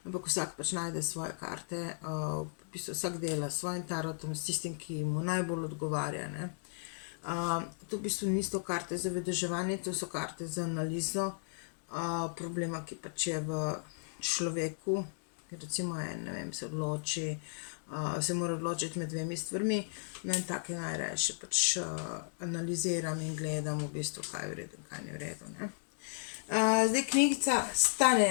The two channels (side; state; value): right; silent; digital silence